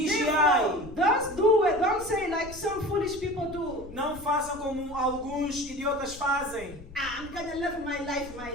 Therefore, don't do it. Don't say like some foolish people do. Não façam como alguns idiotas fazem. I'm going to live my life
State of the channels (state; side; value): noise; left; rumble, 16 dB below the sound